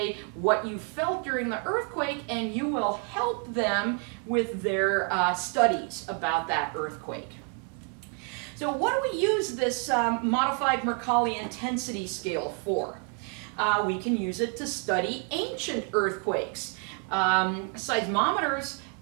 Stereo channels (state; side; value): quieter; left; 39.1 dB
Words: what you felt during the earthquake and you will help them with their studies about that earthquake. So what do we use this modified Mercalli intensity scale for? We can use it to study ancient earthquakes. Seismometers